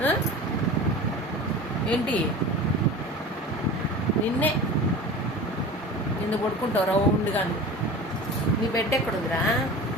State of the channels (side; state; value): both; normal; correlation 0.36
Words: ఏంటి నిన్ను పడుకుంటావు రౌండ్గాను. నీ బెడ్ ఎక్కడుందిరా?